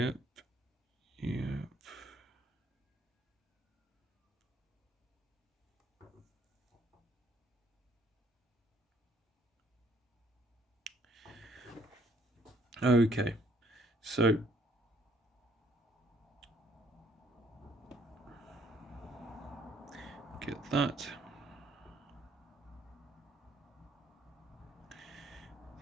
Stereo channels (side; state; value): both; normal; correlation 0.65